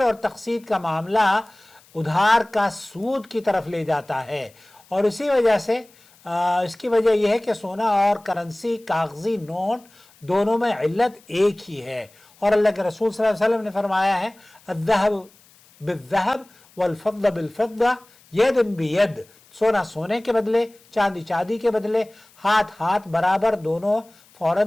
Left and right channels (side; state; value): left; noise; hiss, 29 dB below the sound